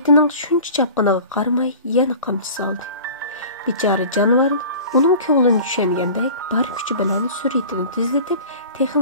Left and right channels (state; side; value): inverted; both; correlation -0.41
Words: shuncha chapqiniga qaramay yana qamchi soldi. Bechora jonivor uning ko'nglini tushungandek bar kuchi bilan suratini tezlatib,